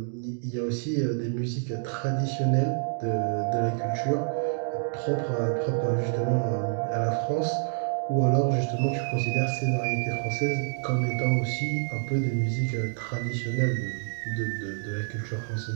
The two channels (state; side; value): silent; left; digital silence